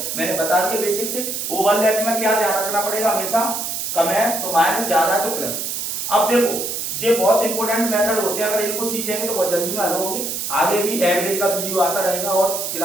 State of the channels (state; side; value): noise; right; hiss, 3 dB below the sound